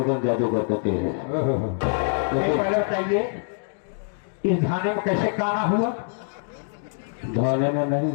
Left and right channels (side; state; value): right; silent; 62 dB below the other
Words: जादूगर कहते हैं। पहले बताइए इस धाने में कैसे काना हुआ? धाने में नहीं,